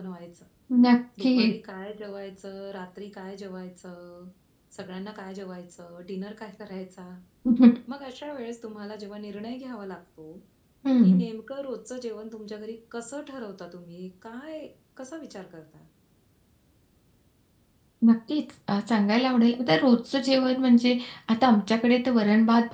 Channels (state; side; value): identical; both; correlation 1.00